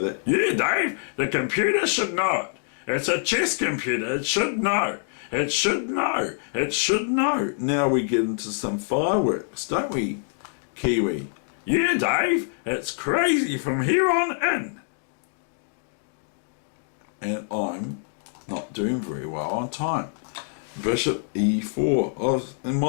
that. Yeah, Dave, the computer should know it. It's a chess computer, it should know. It should know. It should know. Now we get into some fireworks, don't we, Kiwi? Yeah, Dave, it's crazy from here on in. And I'm not doing very well on time. Bishop e4. And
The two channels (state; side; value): silent; right; 62 dB below the other